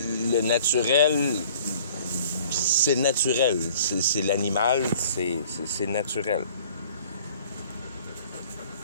Le naturel, c'est naturel. C'est l'animal, c'est naturel.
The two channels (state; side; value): inverted; both; correlation -0.52